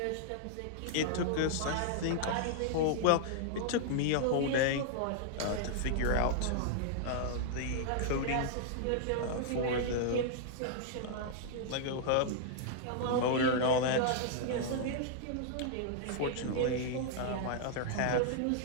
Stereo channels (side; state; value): both; different; correlation -0.01